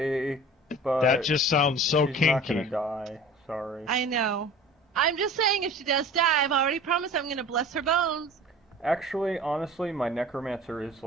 But That just sounds so she's not kinky. gonna die. Sorry. I know. I'm just saying if she does die, I've already promised I'm going to bless her bones. Actually, honestly, my necromancer is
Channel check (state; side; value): normal; both; correlation 0.42